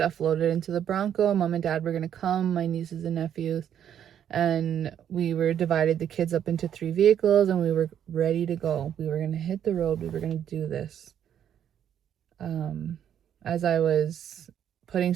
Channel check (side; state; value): left; quieter; 9.6 dB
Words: loaded into the Bronco. Mom and dad were going to come, my nieces and nephews, and we were divided the kids up into 3 vehicles, and we were ready to go. We were going to hit the road. We were going to do this. As I was putting